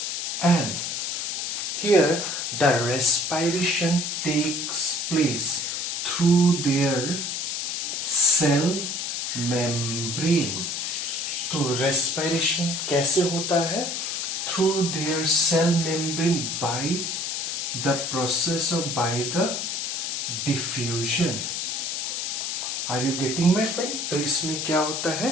and here the respiration takes place through their cell membrane. तो respiration कैसे होता है? Through their cell membrane by the process of by the diffusion. Are you getting my point? तो इसमें क्या होता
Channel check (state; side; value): noise; left; hiss, 2 dB below the sound